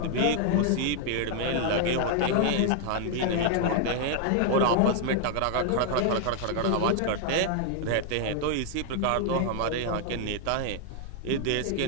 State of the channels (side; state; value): both; different; correlation 0.00